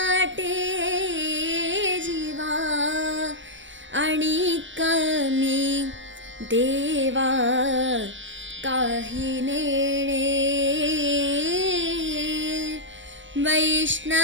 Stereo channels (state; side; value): late; left; 0.55 ms